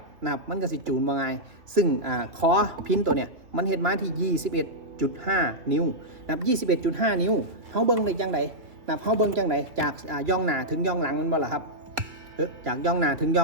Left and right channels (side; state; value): left; late; 2.7 ms